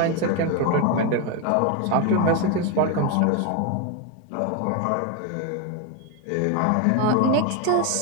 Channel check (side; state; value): both; different; correlation 0.02